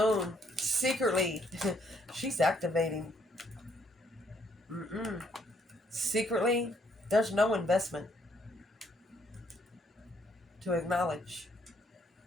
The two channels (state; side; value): normal; both; correlation 0.69